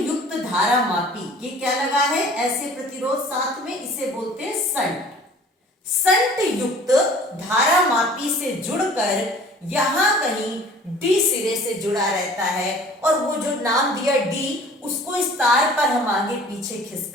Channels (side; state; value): both; normal; correlation 0.48